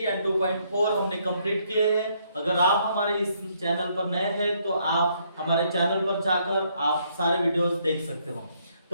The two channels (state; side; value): inverted; both; correlation -0.70